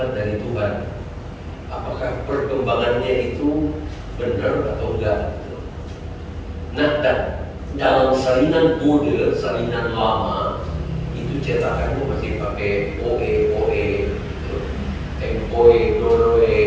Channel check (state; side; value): identical; both; correlation 1.00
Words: dari Tuhan. Apakah perkembangannya itu benar atau enggak? Nah, dalam salinan Bode, salinan lama, itu cetakannya masih pakai OE, tempoe, doroe.